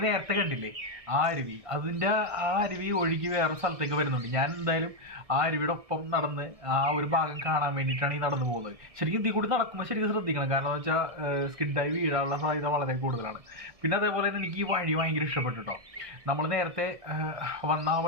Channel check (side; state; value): left; late; 1.7 ms